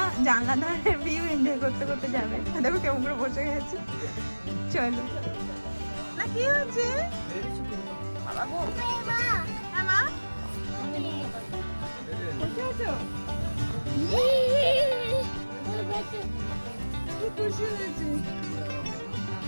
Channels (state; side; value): inverted; both; correlation -1.00